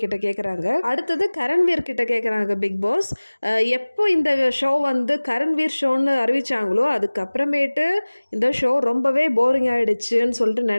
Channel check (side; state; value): both; inverted; correlation -1.00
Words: கிட்ட கேட்குறாங்க. அடுத்தது கரண்வீர் கிட்ட கேட்குறாங்க பிக் பாஸ், எப்போ இந்த ஷோ வந்து கரண்வீர் ஷோன்னு அறிவிச்சாங்களோ அதுக்கப்புறமேட்டு இந்த ஷோ ரொம்பவே போரிங் ஆகிடுச்சுன்னு சொல்லிட்டு